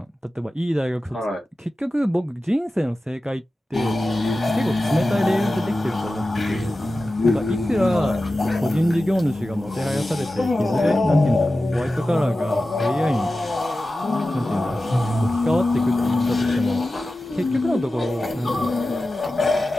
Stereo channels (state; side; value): normal; both; correlation 0.94